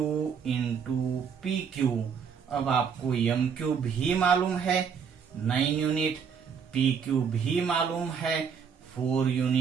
into P Q. अब आपको एम क्यू भी मालूम है 9 यूनिट, पी क्यू भी मालूम है 4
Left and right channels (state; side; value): quieter; left; 6.7 dB